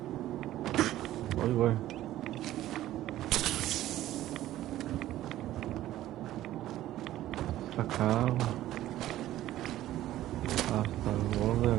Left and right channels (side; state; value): left; quieter; 14.1 dB